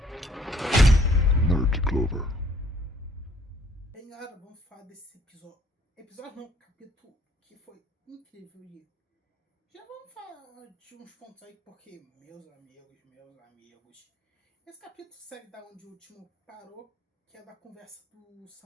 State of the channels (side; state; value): both; normal; correlation 0.60